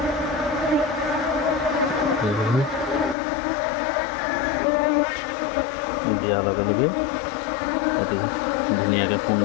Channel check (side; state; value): right; drops out; at 3.2 s